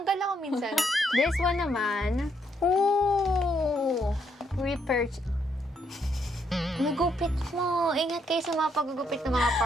ako minsan. This one naman. Ooh! Repurchase. Nagupit mo. Ingat kayo sa mga paggugupit ng mga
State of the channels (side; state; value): both; normal; correlation 0.74